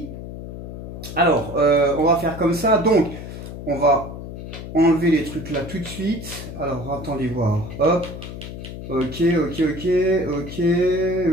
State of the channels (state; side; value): noise; left; hum, 10 dB below the sound